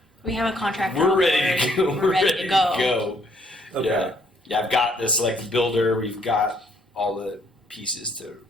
We have a contract. we're on ready to board. go. We're ready to go. Okay. Yeah. I've got the select builder. We've got all the pieces to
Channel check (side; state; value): both; normal; correlation 0.67